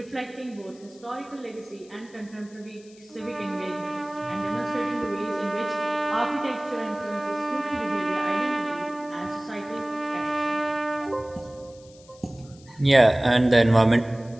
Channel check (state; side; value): noise; left; hiss, 25 dB below the sound